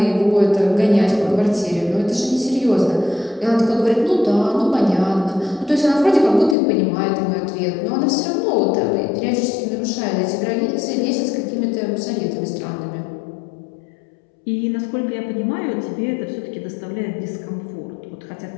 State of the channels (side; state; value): right; drops out; at 6.6 s